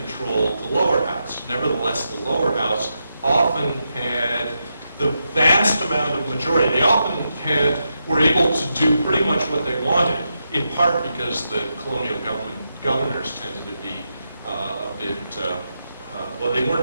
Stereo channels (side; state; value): both; inverted; correlation -0.85